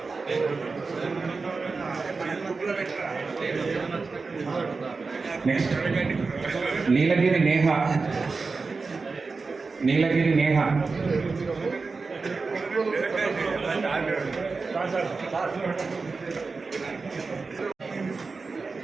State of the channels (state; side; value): quieter; left; 4.3 dB